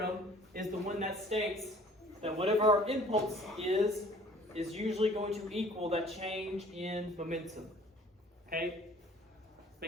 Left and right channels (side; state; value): both; normal; correlation 0.53